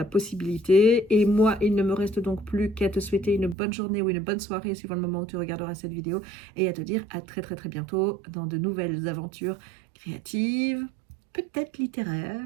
possibilité. Et moi, il ne me reste donc plus qu'à te souhaiter une bonne journée ou une bonne soirée suivant le moment où tu regarderas cette vidéo et à te dire à très très très bientôt dans de nouvelles aventures créatives, peut-être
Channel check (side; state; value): left; drops out; at 3.6 s